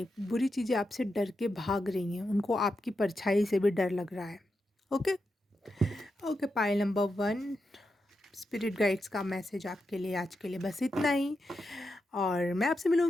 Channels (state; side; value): normal; both; correlation 0.87